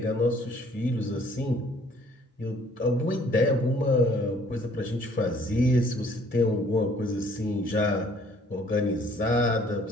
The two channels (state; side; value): normal; both; correlation 0.59